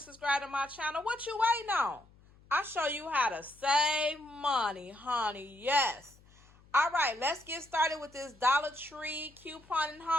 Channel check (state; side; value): noise; left; hum, 27 dB below the sound